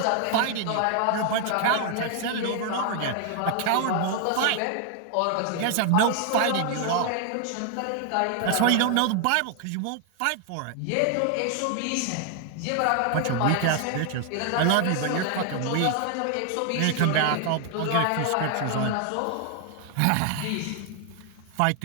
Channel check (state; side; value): different; both; correlation 0.00